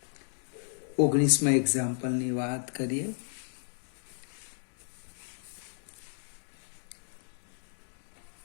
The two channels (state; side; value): silent; right; digital silence